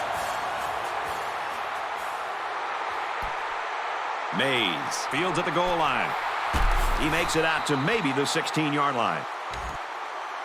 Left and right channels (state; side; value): identical; both; correlation 1.00